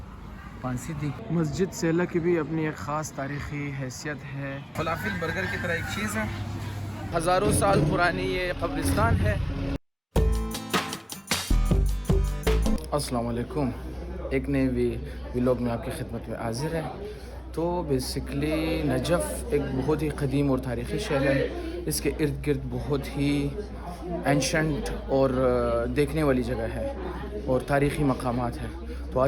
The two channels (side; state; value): both; identical; correlation 1.00